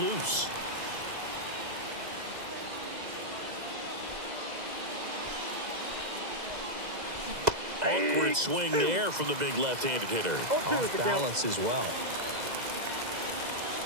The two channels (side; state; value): left; late; 2.0 ms